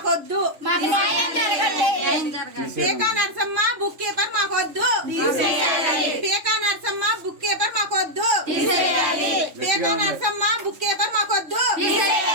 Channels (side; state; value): left; late; 3.5 ms